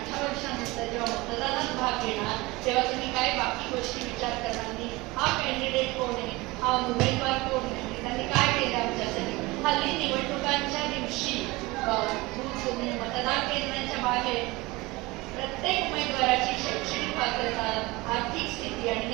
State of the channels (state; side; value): quieter; left; 22.2 dB